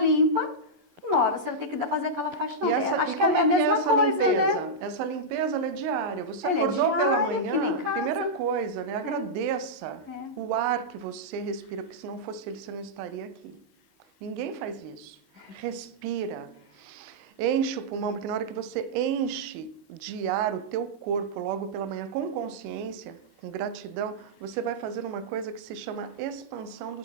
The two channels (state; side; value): late; left; 11 ms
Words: uma hora você vai ter que fazer aquela faxina. Acho que é a mesma coisa, limpeza? Né? Essa limpeza, ela é diária. Você acordou pela manhã, primeira coisa, né? Agradeça o ar que você respira, porque se não fosse ele, você não estaria aqui. Ninguém faz isso. Respira. Enche o pulmão, porque na hora que você enche de ar o teu corpo logo pela manhã com consciência, com gratidão, você vai fazer uma coisa que se chama expansão